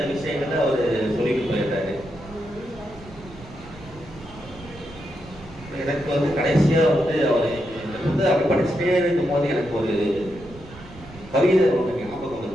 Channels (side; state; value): right; noise; rumble, 18 dB below the sound